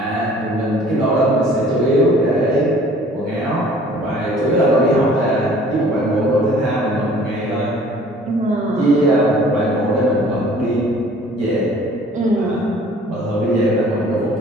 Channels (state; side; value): normal; both; correlation 0.52